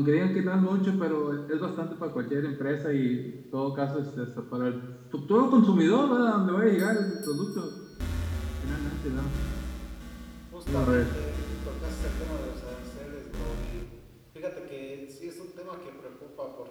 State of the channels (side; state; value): both; identical; correlation 1.00